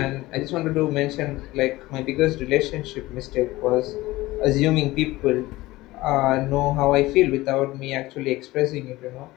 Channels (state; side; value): quieter; right; 18.7 dB